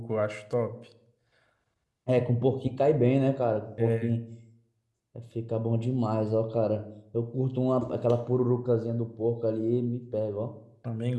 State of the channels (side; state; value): both; identical; correlation 1.00